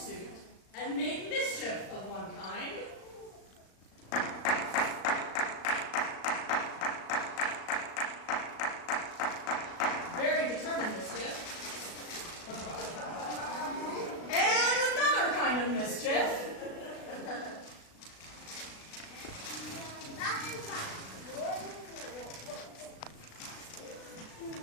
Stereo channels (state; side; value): late; right; 36 ms